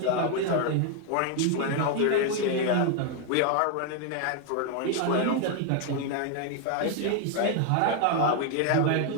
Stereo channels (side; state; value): both; different; correlation 0.00